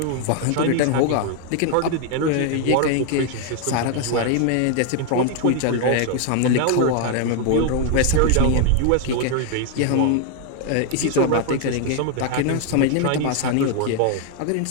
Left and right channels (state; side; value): different; both; correlation 0.00